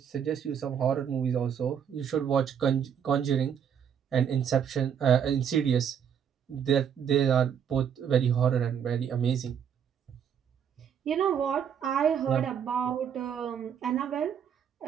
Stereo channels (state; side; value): quieter; left; 8.1 dB